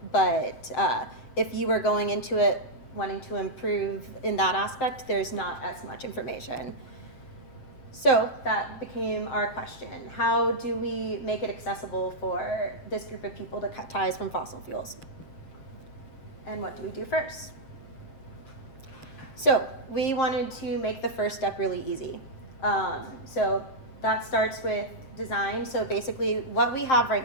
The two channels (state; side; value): late; right; 7.6 ms